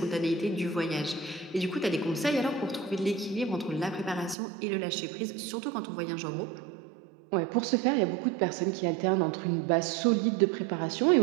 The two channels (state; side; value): drops out; left; at 4.4 s